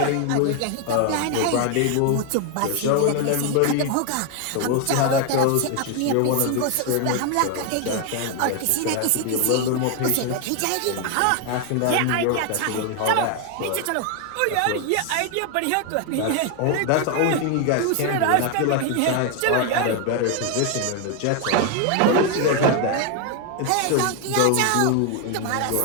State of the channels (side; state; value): both; different; correlation 0.01